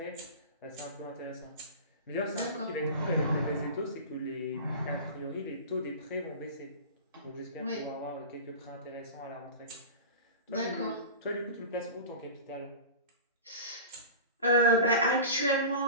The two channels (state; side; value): inverted; both; correlation -0.33